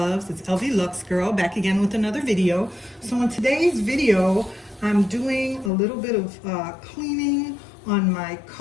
it's LV Lux Girl back again with another video. So in today's video, I'm doing a little bit of cleaning on my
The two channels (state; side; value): drops out; right; at 5.7 s